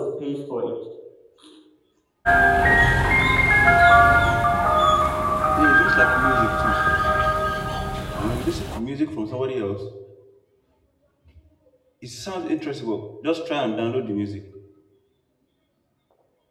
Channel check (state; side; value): identical; both; correlation 1.00